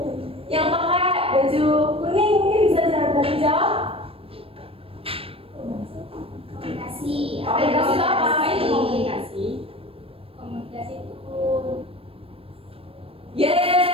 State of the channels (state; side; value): late; left; 0.28 ms